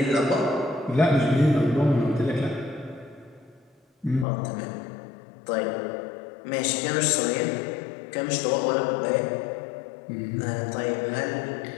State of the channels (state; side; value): drops out; right; at 4.2 s